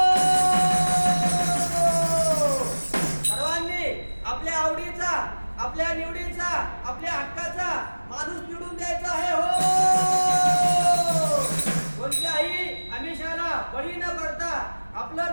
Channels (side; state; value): both; inverted; correlation -1.00